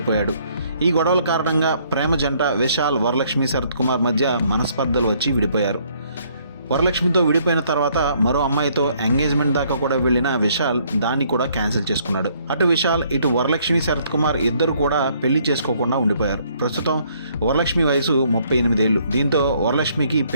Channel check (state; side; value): inverted; both; correlation -0.66